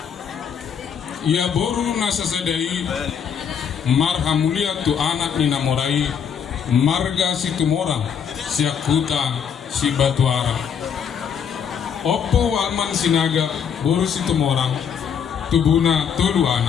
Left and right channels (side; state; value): right; quieter; 7.5 dB